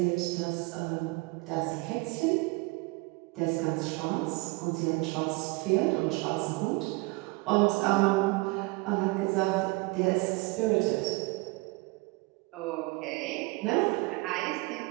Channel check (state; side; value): quieter; left; 25.4 dB